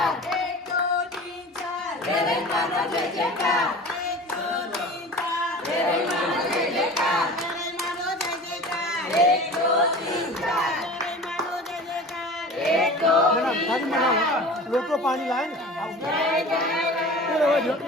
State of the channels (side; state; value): both; normal; correlation 0.38